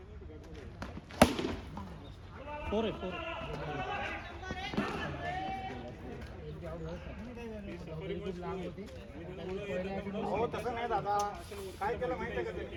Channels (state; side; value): identical; both; correlation 1.00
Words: फोर आहे फोर हो तसं नाही दादा काय केलं माहितीये का त्यांनी